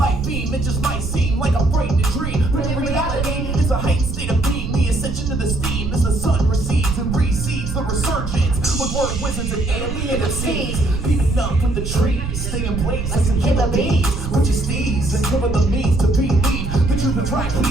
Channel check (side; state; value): right; noise; rumble, 5 dB below the sound